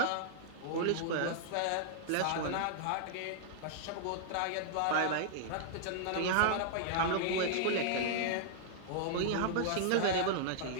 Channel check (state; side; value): different; both; correlation -0.01